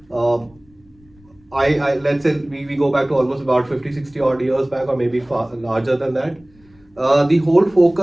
let's say we go back to almost about 50, 60 odd years back, or maybe far larger than that. The whole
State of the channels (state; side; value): noise; left; rumble, 29 dB below the sound